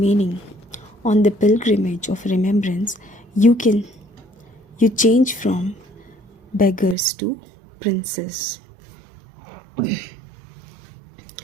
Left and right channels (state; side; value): drops out; left; at 7.0 s